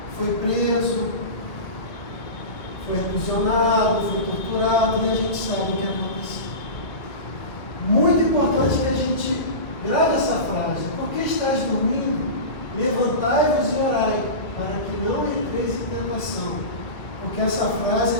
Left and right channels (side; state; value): right; late; 1.8 ms